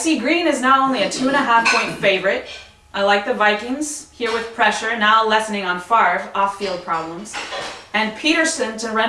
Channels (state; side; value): identical; both; correlation 1.00